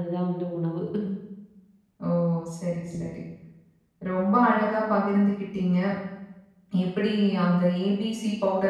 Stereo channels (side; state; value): both; identical; correlation 1.00